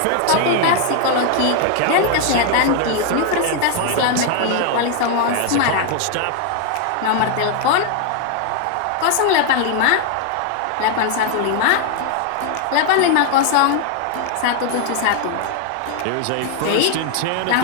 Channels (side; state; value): both; different; correlation 0.00